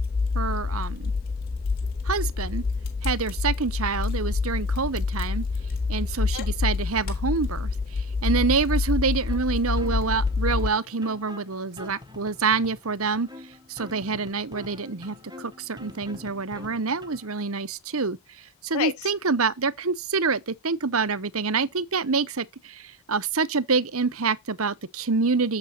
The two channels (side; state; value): both; normal; correlation 0.24